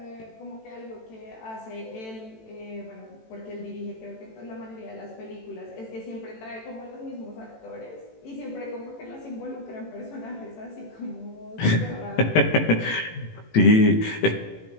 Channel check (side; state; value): right; late; 18 ms